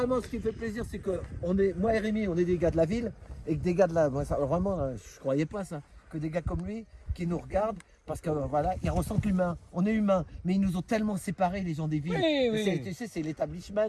ce qui me fait plaisir, c'est que moi et Rémi, on est des gars de la ville, et que des gars de la. Moi, ça, vraiment, je croyais pas ça. Que des gars comme lui, qui nous regardent, parce que voilà, ils ressentent l'humain. On est humain, mais ils nous ont tellement séparés, les gens des villes. Tu sais, c'est l'établissement,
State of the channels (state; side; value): identical; both; correlation 1.00